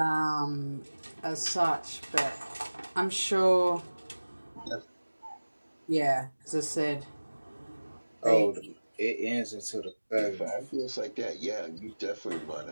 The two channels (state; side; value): inverted; both; correlation -1.00